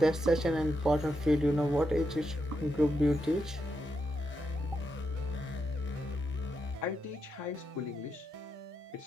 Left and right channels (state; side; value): normal; both; correlation 0.84